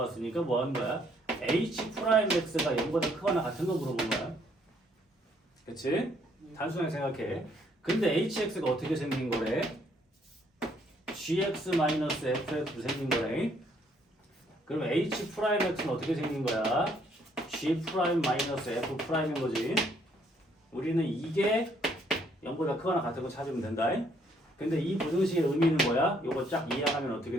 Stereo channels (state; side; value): normal; both; correlation 0.67